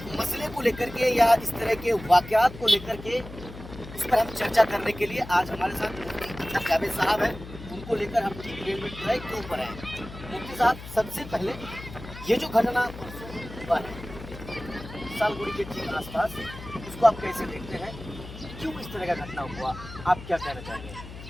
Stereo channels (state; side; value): noise; left; hum, 14 dB below the sound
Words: मसले को लेकर के या इस तरह के वाकयात को लेकर के उस पर हम चर्चा करने के लिए आज हमारे साथ मुफ्ती जावेद साहब हैं। उनको लेकर हम ठीक रेलवे ट्रैक के ऊपर हैं। मुफ्ती साहब, सबसे पहले ये जो घटना हुआ है सालगुड़ी के ठीक आसपास, उसको आप कैसे देखते हैं? क्यों इस तरह का घटना हुआ, आप क्या कहना चाहेंगे?